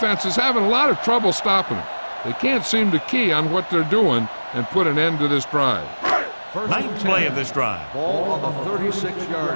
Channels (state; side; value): inverted; both; correlation -1.00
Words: is having a lot of trouble stopping them. They can't seem to key on what they're doing and put an end to this drive. Ninth play of this drive. Ball on the